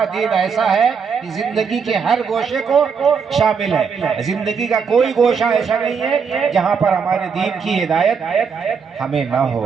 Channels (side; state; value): left; quieter; 6.0 dB